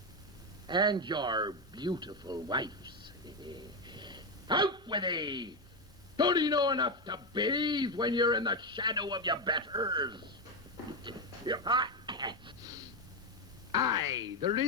And your beautiful wife's. Out with thee! Don't you know enough to bathe when you're in the shadow of your betters? Aye, there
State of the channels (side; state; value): both; normal; correlation 0.09